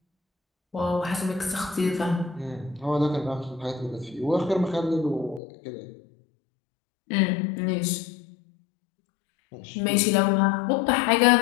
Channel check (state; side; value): drops out; right; at 5.4 s